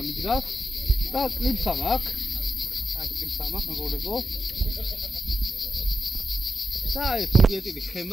მიდგას და კლიპსა მაქვს. აი კლიპსა მაქვს, მეგობრებო. და აი პოლიეტილი ხე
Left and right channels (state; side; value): normal; both; correlation 0.87